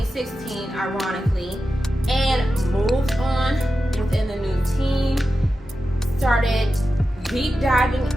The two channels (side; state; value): both; normal; correlation 0.92